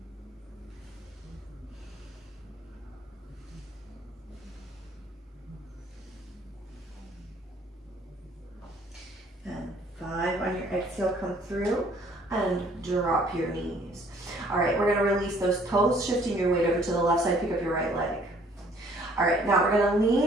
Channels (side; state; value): both; normal; correlation 0.60